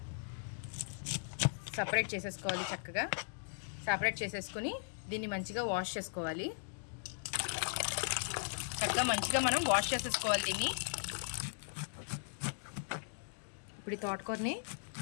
సపరేట్ చేసేసుకోవాలి. చక్కగా సపరేట్ చేసేసుకుని దీన్ని మంచిగా వాష్ చేసుకోవాలి. చక్కగా మంచిగా మనం వాష్ చేసేసుకోవాలి దీన్ని. ఇప్పుడు ఈ తోటకూరని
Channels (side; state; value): right; silent; digital silence